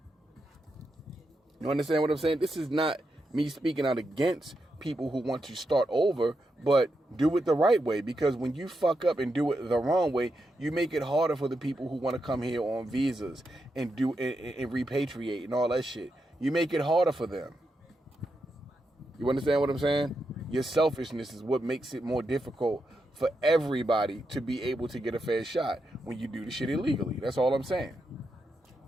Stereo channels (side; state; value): both; normal; correlation 0.85